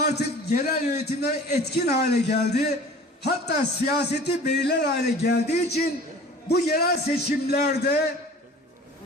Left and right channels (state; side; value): normal; both; correlation 0.44